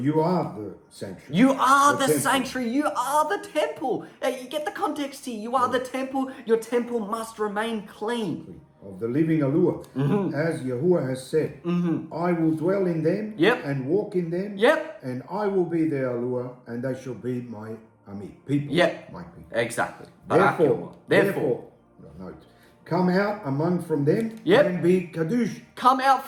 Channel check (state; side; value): identical; both; correlation 1.00